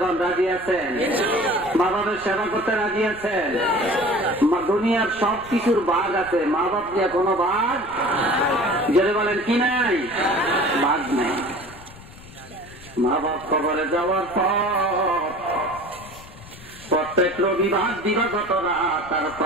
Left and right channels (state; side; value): noise; left; rumble, 19 dB below the sound